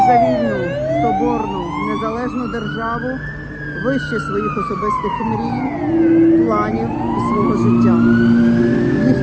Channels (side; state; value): both; identical; correlation 1.00